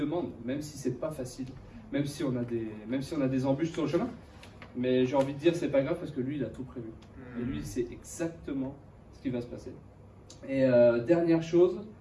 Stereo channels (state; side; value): identical; both; correlation 1.00